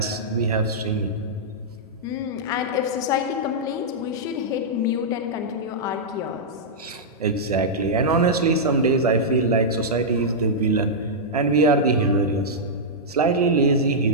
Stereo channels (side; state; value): both; normal; correlation -0.09